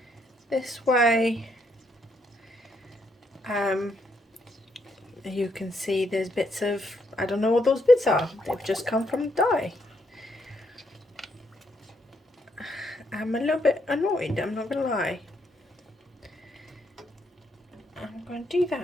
way. You can see there's bits of, I don't know what those bits are. They've just come from dye. I'm a little bit annoyed, I'm not gonna lie. I'm going to do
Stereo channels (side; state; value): both; normal; correlation 0.75